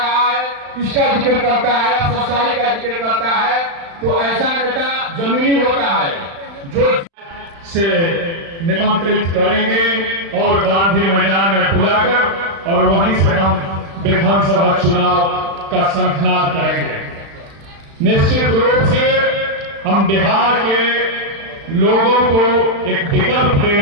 है, इसका जिक्र करता है, सच्चाई का जिक्र करता है, तो ऐसा नेता जमीनी होता है जो से निमंत्रित करेंगे और गांधी मैदान में बुलाकर और वहीं से हम विधानसभा चुनाव का शंखनाद करेंगे। निश्चित रूप से हम बिहार के लोगों को एक विकल्प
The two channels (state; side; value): late; left; 36 ms